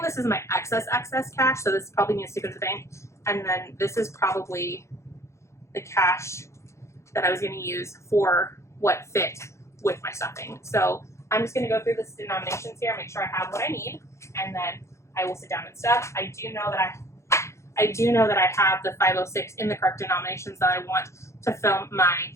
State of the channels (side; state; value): right; late; 0.14 ms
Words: this is my excess cash, so this probably needs to go to the bank. And then this is probably the cash that I was going to use for what fit with my stuffing. So I'm just going to go through the denominations here, make sure I have what I need, and then I will sit down and stuff. I do know that I have the 506 in the correct denominations that I want to film my